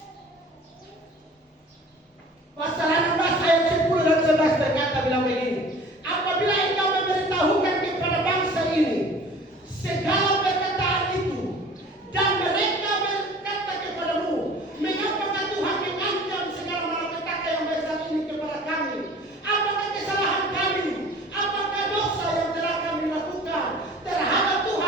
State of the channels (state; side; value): normal; both; correlation 0.45